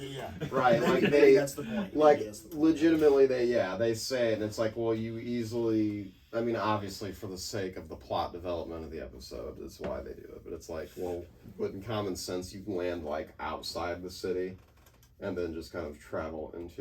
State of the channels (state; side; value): identical; both; correlation 1.00